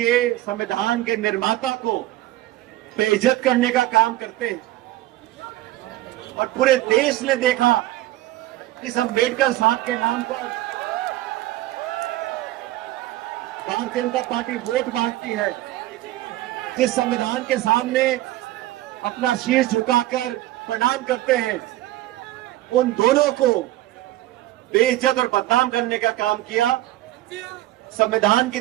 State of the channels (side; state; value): left; quieter; 16.1 dB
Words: संविधान के निर्माता को बेइज्जत करने का काम करते हैं और पूरे देश ने देखा इस अम्बेडकर साहब के नाम पर भारतीय जनता पार्टी वोट मांगती है। जिस संविधान के सामने अपना शीश झुकाकर प्रणाम करते हैं, उन दोनों को बेइज्जत और बदनाम करने का काम किया। संविधान की